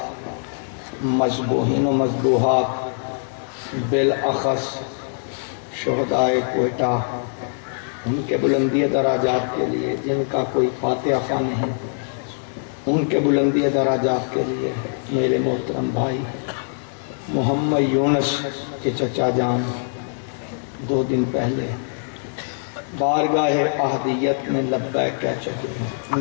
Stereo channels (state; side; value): silent; right; digital silence